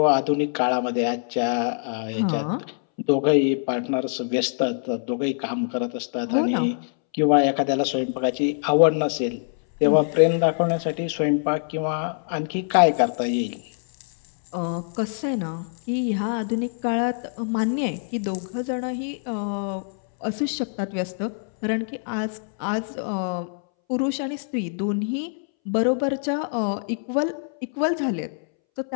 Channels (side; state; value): right; silent; 62 dB below the other